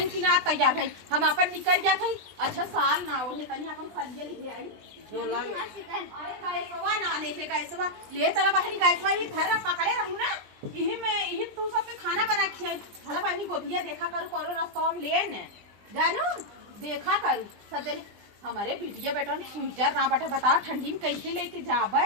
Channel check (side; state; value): left; late; 20 ms